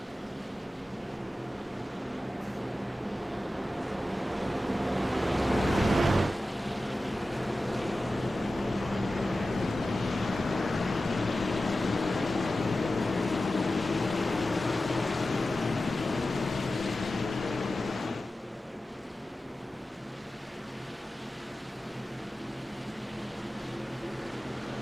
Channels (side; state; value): both; normal; correlation 0.94